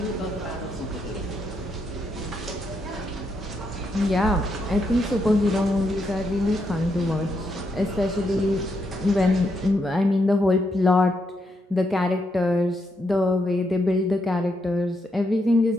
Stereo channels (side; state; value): both; normal; correlation 0.79